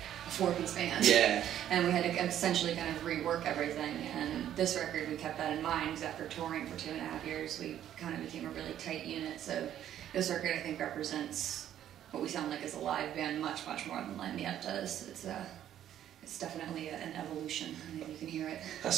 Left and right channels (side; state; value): left; quieter; 11.1 dB